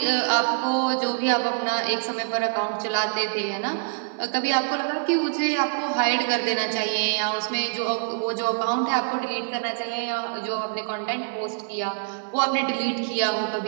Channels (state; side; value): silent; left; digital silence